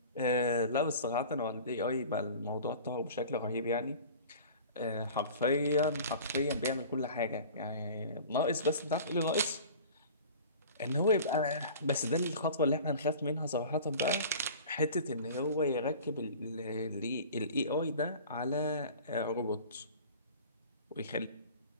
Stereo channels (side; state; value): both; inverted; correlation -0.42